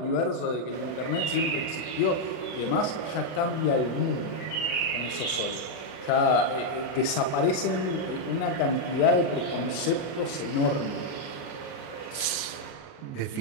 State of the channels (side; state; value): right; late; 40 ms